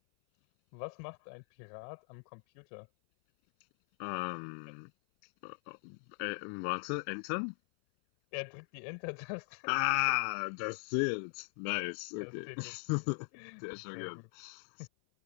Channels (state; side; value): silent; right; 51 dB below the other